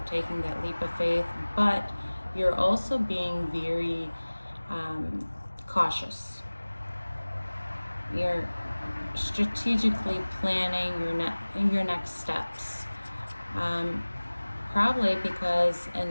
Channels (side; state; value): both; inverted; correlation -1.00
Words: taking that leap of faith, but you're also being very cautious. You're strategically planning your next steps. Probably because in